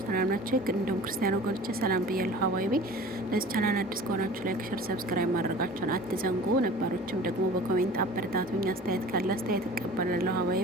ሰላም ናችሁ? እንደውም ክርስቲያን ወገኖቼ ሰላም ብያለሁ። ሀዋይቤ ለዚህ ቻናል አዲስ ከሆናችሁ ላይክ፣ ሼር፣ ሰብስክራይብ ማድረጋችሁን አትዘንጉ። ነባሮችም ደግሞ በኮሜንት አበረታቱኝ። አስተያየት ካለ አስተያየት እቀበላለሁ።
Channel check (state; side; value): normal; both; correlation 0.42